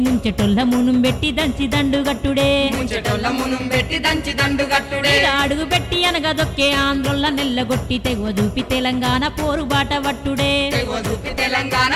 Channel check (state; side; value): identical; both; correlation 1.00